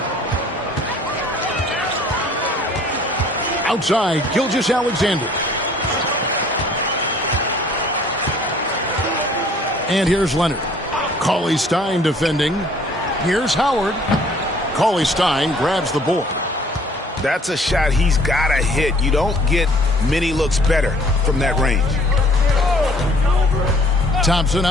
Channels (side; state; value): both; normal; correlation 0.56